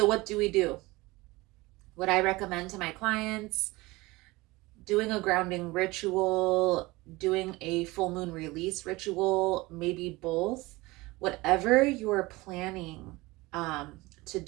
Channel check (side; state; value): left; quieter; 21.6 dB